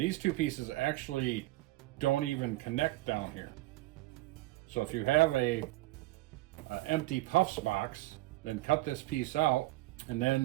two pieces actually don't even connect down here. So if you have a empty Puffs box, then cut this piece out and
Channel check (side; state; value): left; quieter; 18.7 dB